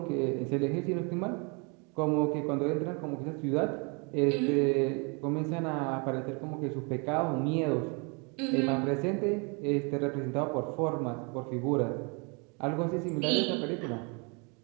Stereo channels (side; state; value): left; quieter; 33.1 dB